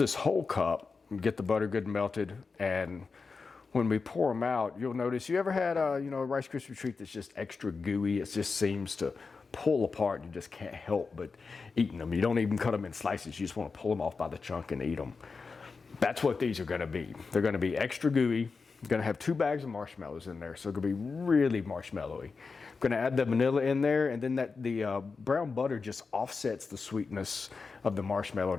whole cup, get the butter good and melted, and when we pour them out, you'll notice, you ever had a Rice Krispie treat that's just extra gooey? It just seems to pull apart. You just can't help but eating them. You don't even cut them in slices. You just want to pull them off by the chunk and eat them. That's what these are going to be. They're going to be extra gooey. I'm going to have 2 bags of marshmallows in there, so it's going to be really marshmallowy. I'm going to add the vanilla in there, and then the brown butter just offsets the sweetness of the marshmallow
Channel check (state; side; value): quieter; right; 4.6 dB